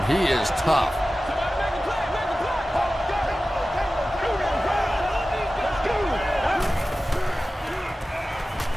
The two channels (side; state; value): both; normal; correlation 0.95